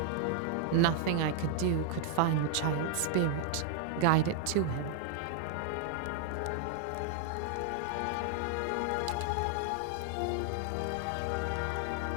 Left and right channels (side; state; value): both; different; correlation -0.01